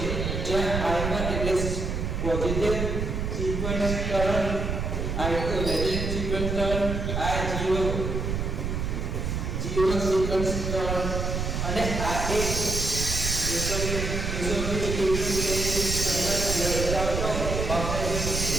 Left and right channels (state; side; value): noise; right; rumble, 2 dB below the sound